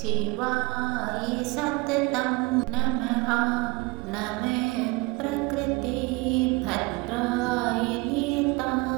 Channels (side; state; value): left; quieter; 25.0 dB